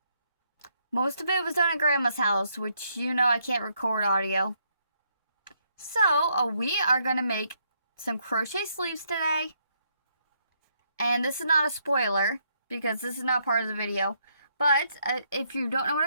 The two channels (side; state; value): both; inverted; correlation -0.74